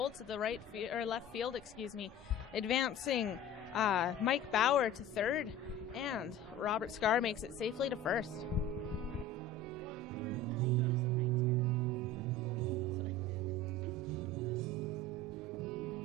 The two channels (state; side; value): normal; both; correlation 0.38